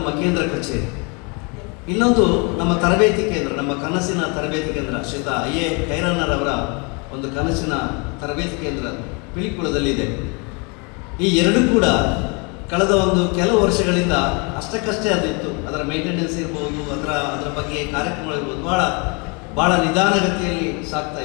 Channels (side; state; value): right; quieter; 32.1 dB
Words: ಕೇಂದ್ರ ಕಚೇರಿ, ಇನ್ನೊಂದು ನಮ್ಮ ತರಬೇತಿ ಕೇಂದ್ರ, ನಮ್ಮ ಕನಸಿನ ತರಬೇತಿ ಕೇಂದ್ರ ಶ್ರೀಯುತ IA ಖೈರನ್ನರವರ ಒಂದು ಕನಸಿನ ತರಬೇತಿ ಕೇಂದ್ರ ಪಿಲಿಕುಳದಲ್ಲಿದೆ. ಈ 2 ಕೂಡ ಕಳೆದ ಕೆಲವು ವರ್ಷಗಳಿಂದ ಅಷ್ಟಕ್ಕಷ್ಟೇ ಅದಿತ್ತು. ಅದರ ಮೇಂಟೆನೆನ್ಸ್ ಇರ್ಬೋದು, ಅದರ ಬಗ್ಗೆ ಕಾರ್ಯಕ್ರಮಗಳಿರ್ಬೋದು, ಭಾಳ ನಿಧಾನಗತಿಯಲ್ಲಿ ಸಾಗ್ತಾ